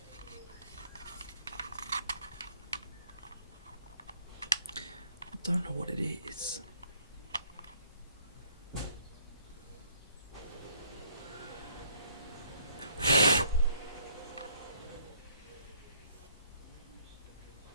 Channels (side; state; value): both; inverted; correlation -0.64